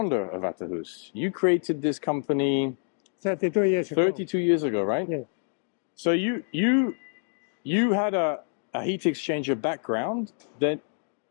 of Vahterus. You created this company 32 years ago. 32 years ago, right? Yeah. So you had a heat exchanger background that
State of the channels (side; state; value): right; silent; 60 dB below the other